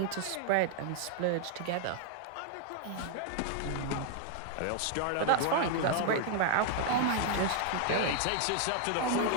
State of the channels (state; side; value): different; both; correlation 0.00